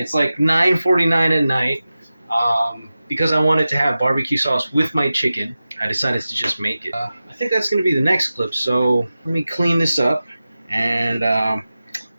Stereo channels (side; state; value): both; inverted; correlation -0.94